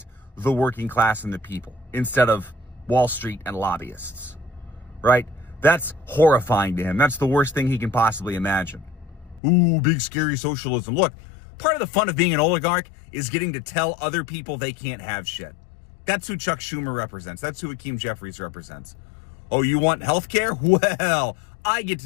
the working class and the people instead of Wall Street and lobbyists, right? That's horrifying to him. That's the worst thing he can possibly imagine. Ooh, big scary socialism. Look, part of the fun of being an oligarch is getting to tell other people they can't have shit. That's who Chuck Schumer represents. That's who Hakeem Jeffries represents. Oh, you want health care? Well, I get to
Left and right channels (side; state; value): right; drops out; at 9.4 s